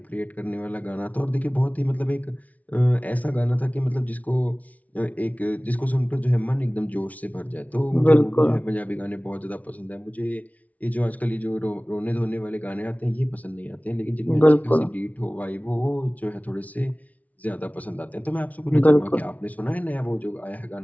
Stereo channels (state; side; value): late; right; 0.071 ms